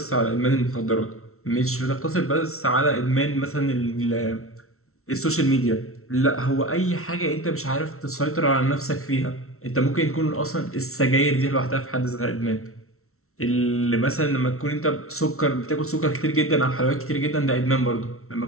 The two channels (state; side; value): late; right; 0.63 ms